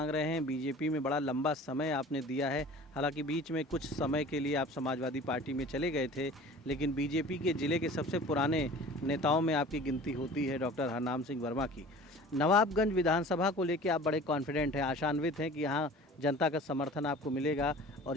रहे हैं। बीजेपी में बड़ा लंबा समय आपने दिया है, हालांकि बीच में कुछ समय के लिए आप समाजवादी पार्टी में चले गए थे, लेकिन बीजेपी के ज़िले के सबसे पुराने नेताओं में आपकी गिनती होती है डॉक्टर हरनाम सिंह वर्मा की। नवाबगंज विधानसभा को लेके आप बड़े कॉन्फिडेंट हैं, आशान्वित हैं कि यहाँ जनता का समर्थन आपको मिलेगा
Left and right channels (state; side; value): normal; both; correlation 0.43